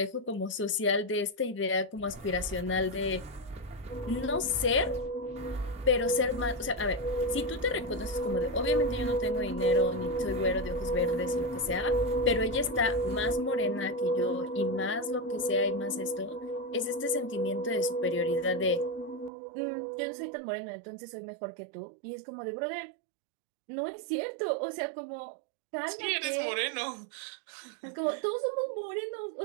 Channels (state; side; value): drops out; left; at 19.3 s